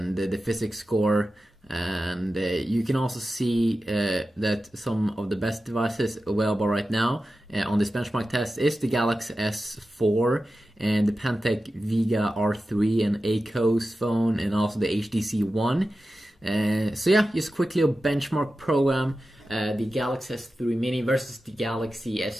the physics score, and you can also see that some of the best devices available right now on this benchmark test is the Galaxy S4 and the Pantech Vega R3 and Acos phone, and also the HTC One. So yeah, just quickly a benchmark program, the Galaxy S3 Mini versus the Galaxy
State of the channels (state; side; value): normal; both; correlation 0.93